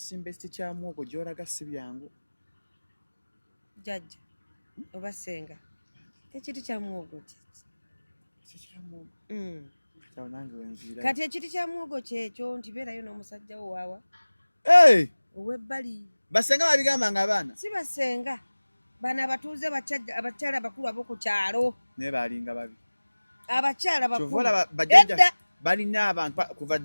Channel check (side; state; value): both; inverted; correlation -1.00